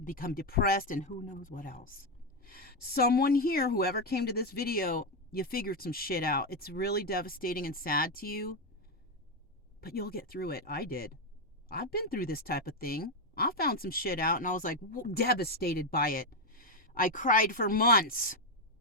depressed, and who knows what else. Someone here, whoever came to this video, you figured some shit out. It's really devastating and sad to you, but you'll get through it. I did. I've been through this type of thing. I found some shit out, and I was like devastated by it. I cried for months,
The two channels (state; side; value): normal; both; correlation 0.06